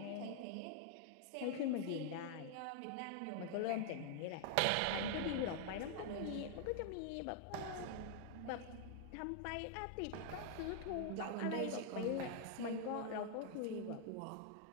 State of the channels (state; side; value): different; both; correlation 0.00